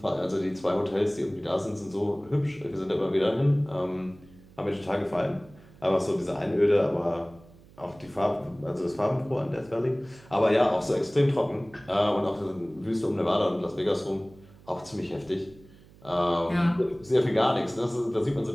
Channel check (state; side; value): noise; right; hum, 24 dB below the sound